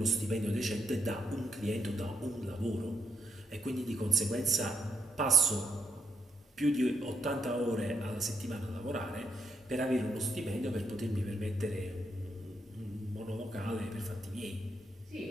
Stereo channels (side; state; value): both; normal; correlation 0.76